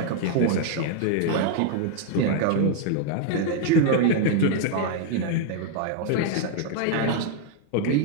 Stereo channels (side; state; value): both; different; correlation 0.00